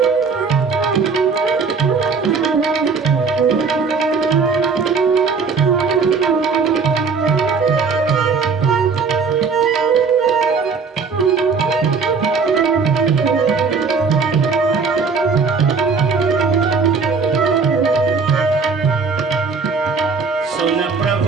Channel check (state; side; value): quieter; left; 5.1 dB